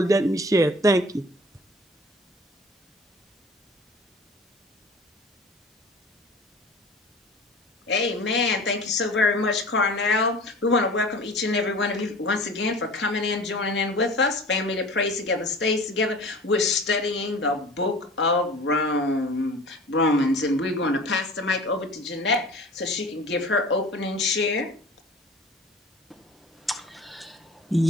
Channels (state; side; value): normal; both; correlation 0.41